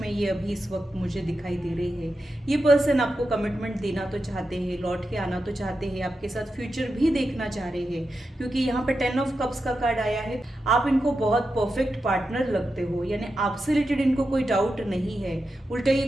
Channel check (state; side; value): normal; both; correlation 0.89